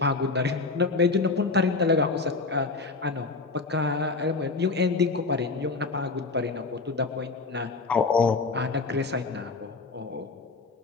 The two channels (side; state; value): right; quieter; 3.9 dB